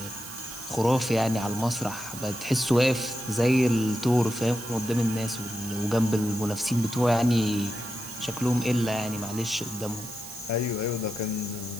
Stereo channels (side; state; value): right; noise; hiss, 13 dB below the sound